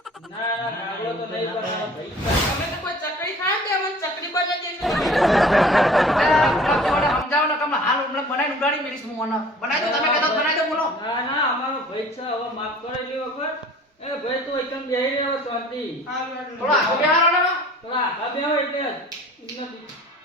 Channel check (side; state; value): both; normal; correlation 0.47